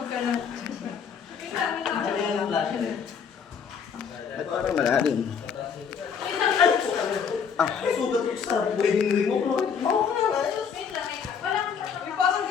Ano yung flash na yun? At parang malalim. Sugat ko sa wedding ring mo. Parang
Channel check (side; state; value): right; quieter; 6.8 dB